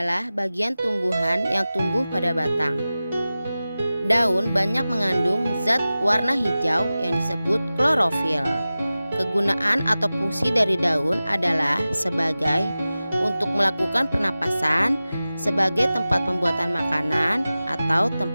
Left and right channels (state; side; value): inverted; both; correlation -0.96